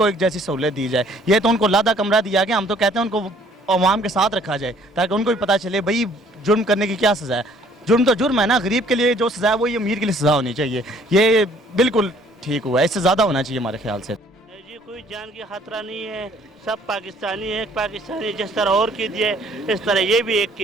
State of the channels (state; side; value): normal; both; correlation 0.59